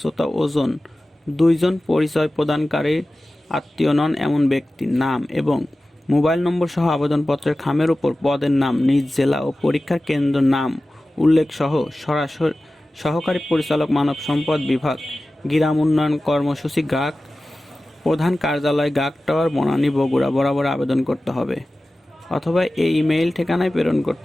ওজন, 2 জন পরিচয় প্রদানকারীর আত্মীয় নন এমন ব্যক্তির নাম এবং মোবাইল নম্বর সহ আবেদনপত্রের খামের উপর পদের নাম, নিজ জেলা ও পরীক্ষার কেন্দ্র নাম উল্লেখ সহ সরাসরি সহকারী পরিচালক মানব সম্পদ বিভাগ, গ্রাম উন্নয়ন কর্মসূচি, গ্রাহক প্রধান কার্যালয়, গাক টাওয়ার, বনানী, বগুড়া বরাবর আবেদন করতে হবে অথবা এই ইমেইল ঠিকানায় প্রেরণ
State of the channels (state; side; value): normal; both; correlation 0.96